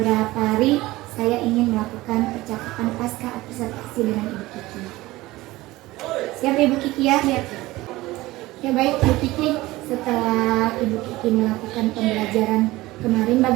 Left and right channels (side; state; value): left; quieter; 18.8 dB